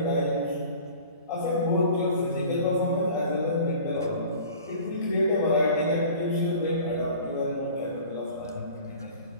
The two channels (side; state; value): both; inverted; correlation -0.44